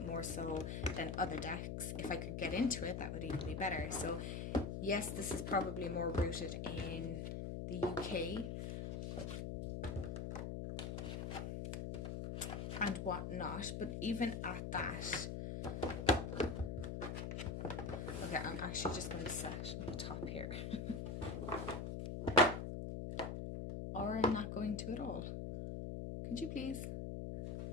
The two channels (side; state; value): left; noise; hum, 4 dB below the sound